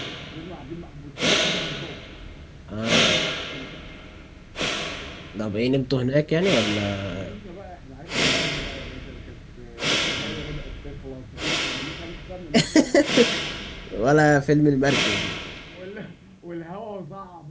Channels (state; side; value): identical; both; correlation 1.00